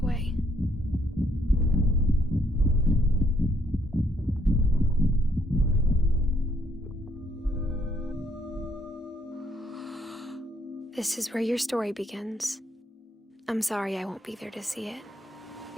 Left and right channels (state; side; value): normal; both; correlation 0.70